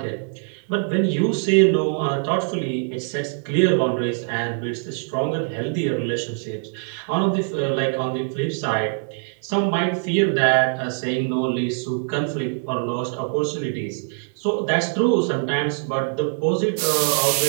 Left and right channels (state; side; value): silent; left; 64 dB below the other